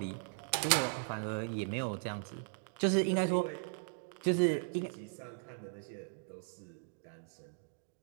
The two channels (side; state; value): left; silent; digital silence